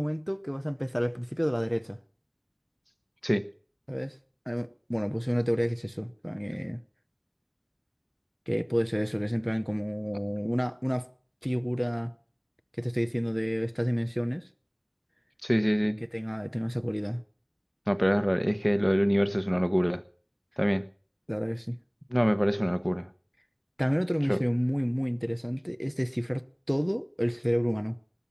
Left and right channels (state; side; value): identical; both; correlation 1.00